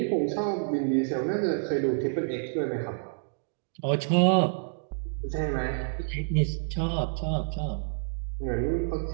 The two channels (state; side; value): silent; left; digital silence